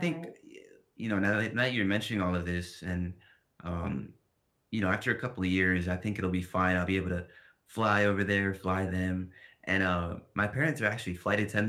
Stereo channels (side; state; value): both; identical; correlation 1.00